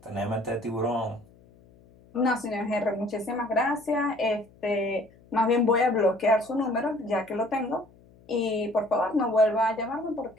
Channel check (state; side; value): noise; left; hum, 27 dB below the sound